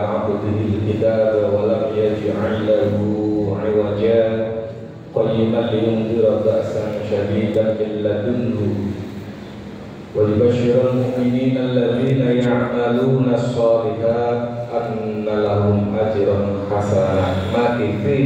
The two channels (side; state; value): both; identical; correlation 1.00